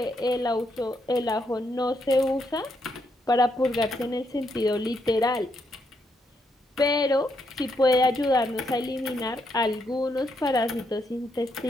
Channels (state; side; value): normal; both; correlation 0.78